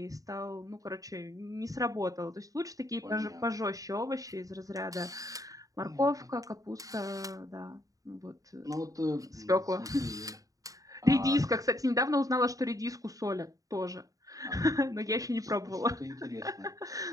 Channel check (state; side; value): late; left; 0.17 ms